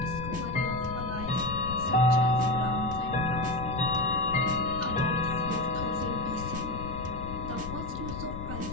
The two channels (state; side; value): noise; left; rumble, 8 dB below the sound